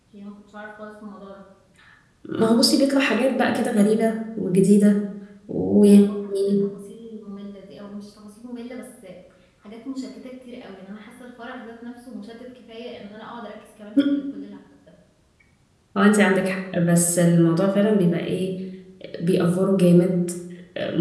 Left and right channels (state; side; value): identical; both; correlation 1.00